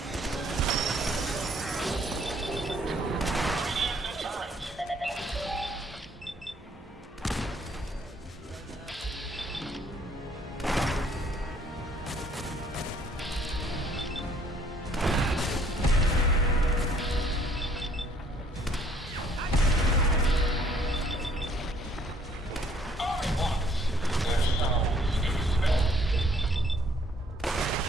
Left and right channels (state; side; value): normal; both; correlation 0.62